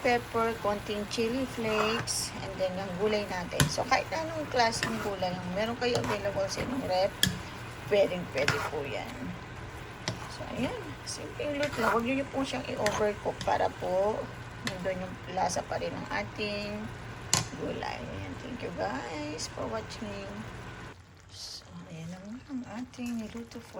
konting chili flakes, and then yung gulay natin. So, kahit anong klaseng gulay yung meron kayo available sa inyong rep, pwede po yan. So, ayan. Simple luto lang. Huwag nyo po siyang i-overcook para po nandun yung lasa pa rin ng ating gulay. Ayan. Thank you guys for watching. So, ayan naman ang ating niluto for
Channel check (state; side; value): identical; both; correlation 1.00